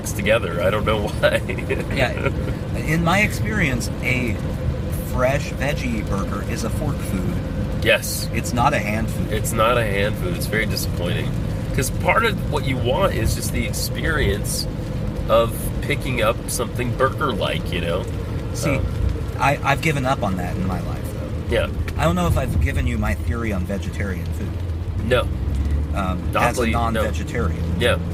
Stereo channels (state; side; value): identical; both; correlation 1.00